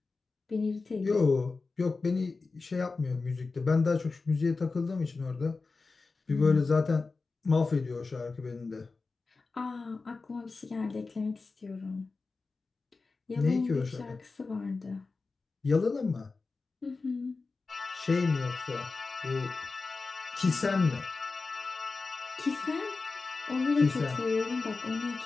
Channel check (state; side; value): quieter; right; 4.0 dB